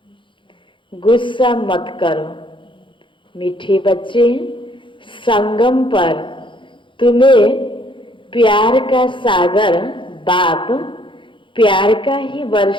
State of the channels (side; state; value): right; late; 0.24 ms